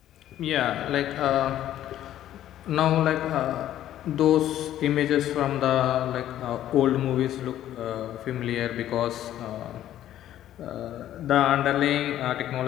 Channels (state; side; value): quieter; right; 12.3 dB